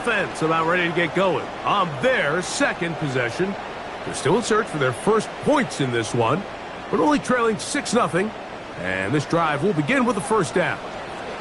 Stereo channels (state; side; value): identical; both; correlation 1.00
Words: about ready to get going on their second possession. They're still in search for their first points in this one, but only trailing 6-0. And this drive will begin with a first down.